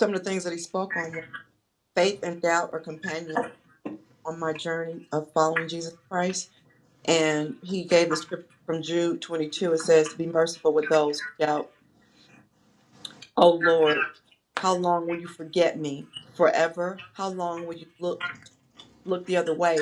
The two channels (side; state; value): both; identical; correlation 1.00